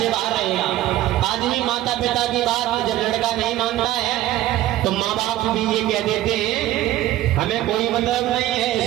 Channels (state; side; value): quieter; left; 14.3 dB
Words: बाहर रहेगा। आदमी माता पिता की बात जब लड़का नहीं मानता है तो माँ बाप भी ये कह देते हैं हमें कोई मतलब नहीं है,